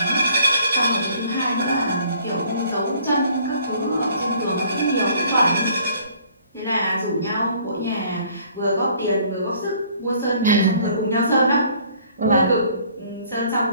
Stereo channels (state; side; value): inverted; both; correlation -0.57